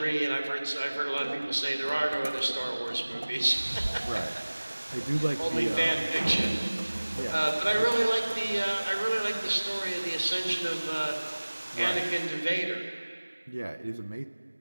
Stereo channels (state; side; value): inverted; both; correlation -1.00